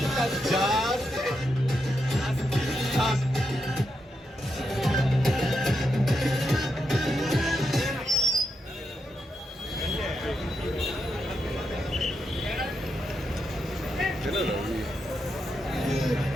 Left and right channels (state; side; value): normal; both; correlation 0.84